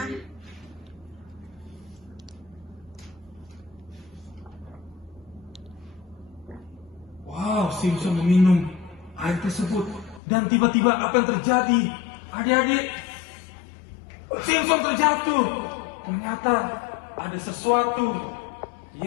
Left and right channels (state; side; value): drops out; right; at 10.2 s